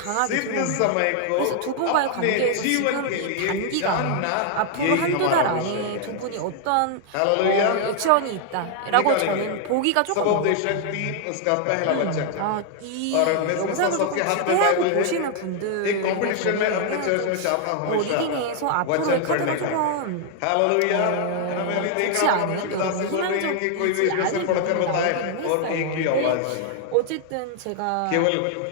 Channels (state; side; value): different; both; correlation 0.00